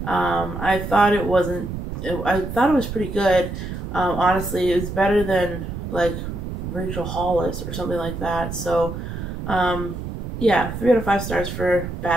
I thought it was pretty good. Honestly, it was better than like Rachel Hollis or something like that. So, yeah, 3 out of 5 stars for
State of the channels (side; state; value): right; noise; rumble, 6 dB below the sound